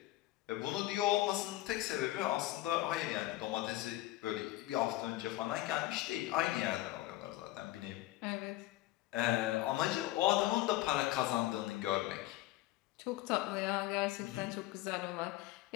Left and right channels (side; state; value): right; quieter; 16.6 dB